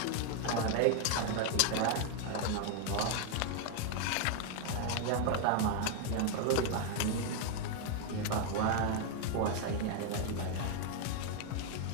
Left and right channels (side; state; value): both; different; correlation 0.00